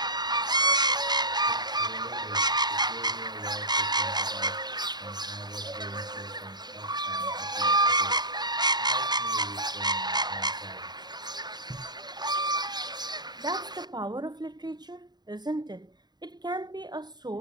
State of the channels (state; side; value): late; left; 0.20 ms